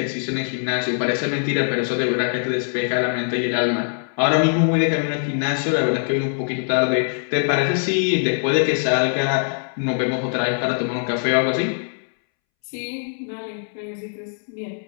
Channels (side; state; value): right; silent; 64 dB below the other